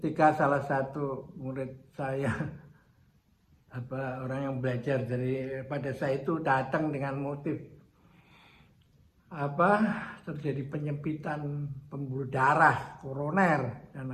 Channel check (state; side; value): identical; both; correlation 1.00